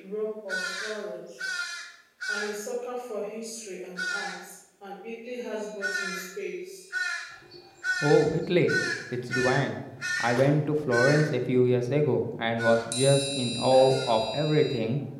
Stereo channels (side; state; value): both; identical; correlation 1.00